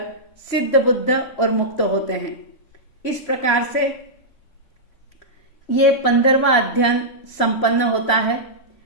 सिद्ध बुद्ध और मुक्त होते हैं। इस प्रकार से ये 15वां अध्ययन संपन्न होता है।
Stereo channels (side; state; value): right; late; 3.0 ms